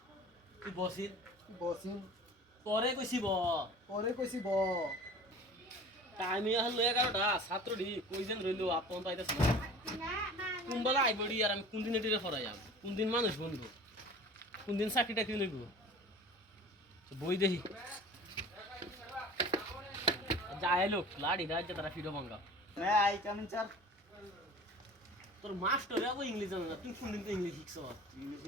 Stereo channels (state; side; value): normal; both; correlation 0.41